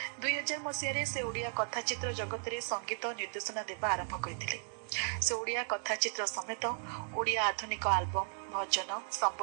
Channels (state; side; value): silent; left; 54 dB below the other